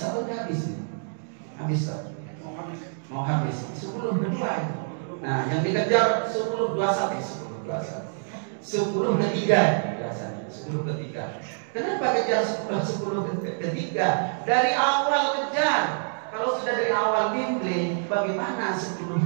atau tidak habis? Habis tak? Mau habis 10/2 itu. Nah, yang dikejar 10/21 biasanya 10/3. Kenapa kejar 10/3? Dari awal kejar. Kalau sudah dari awal bimbing, bagaimana 10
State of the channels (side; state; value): left; silent; digital silence